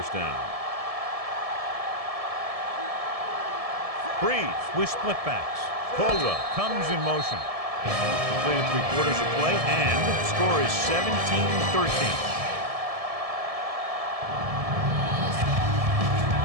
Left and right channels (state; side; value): late; left; 1.7 ms